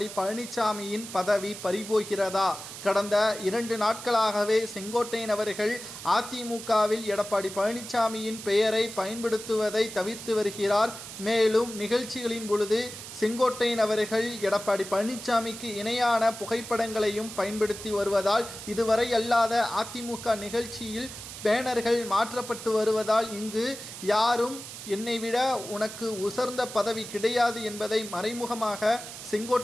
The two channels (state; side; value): noise; right; hiss, 11 dB below the sound